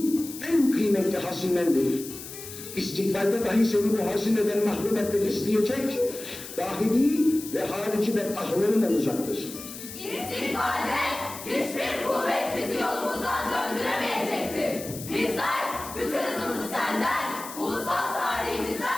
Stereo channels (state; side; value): noise; left; hiss, 12 dB below the sound